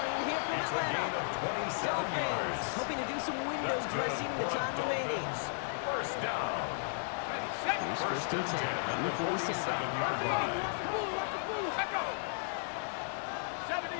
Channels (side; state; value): right; silent; digital silence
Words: here from It's a gain Atlanta. of 27 Dolphins yards. hoping to do some window That's good dressing in the for time remaining. Dolphins. First down. Here's first and 10 from the 47. 47-yard line.